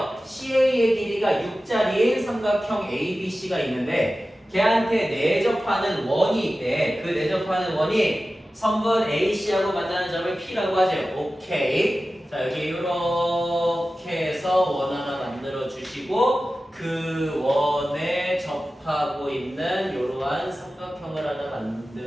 CA의 길이가 6짜리인 삼각형 ABC가 있는데 걔한테 내접하는 원이 있대. 그 내접하는 원이 선분 AC하고 만나는 점을 P라고 하죠. 오케이. 자, 여기 이렇게 해서 원 하나 만들어 주시고 그 원에 접하고 있는 이러한 삼각형을 하나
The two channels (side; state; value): both; normal; correlation 0.95